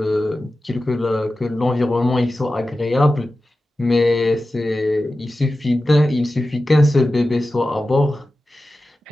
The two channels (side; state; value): both; normal; correlation 0.94